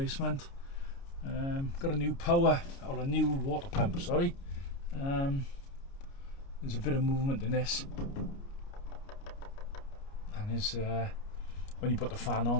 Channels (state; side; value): late; right; 29 ms